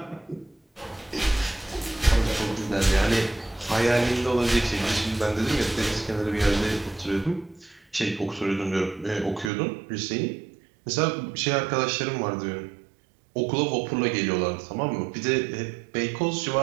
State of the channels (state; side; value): drops out; left; at 9.5 s